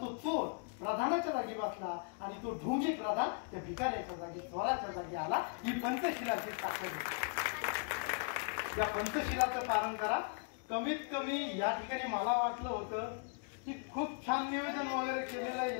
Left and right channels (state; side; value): quieter; right; 39.3 dB